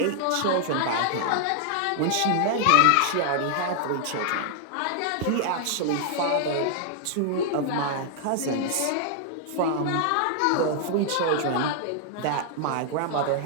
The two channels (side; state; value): both; different; correlation 0.00